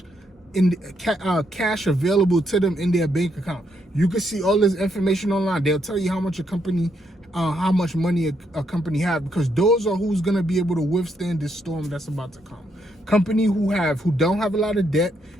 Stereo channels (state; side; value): normal; both; correlation 0.76